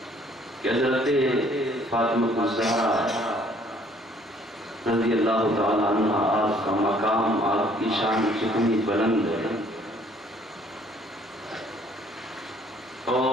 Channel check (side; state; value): both; normal; correlation 0.60